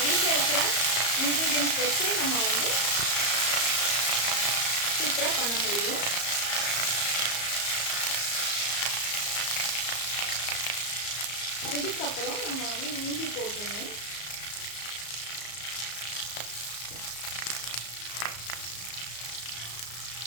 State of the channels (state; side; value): late; right; 34 ms